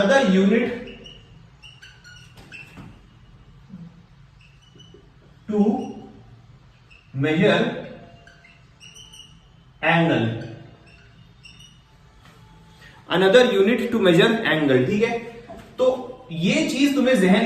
unit to measure angle, another unit to measure angle, ठीक है। तो ये चीज तुम्हें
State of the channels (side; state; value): both; identical; correlation 1.00